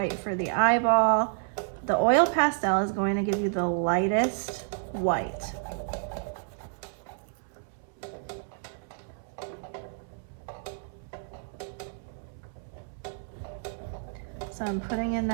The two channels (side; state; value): left; silent; 58 dB below the other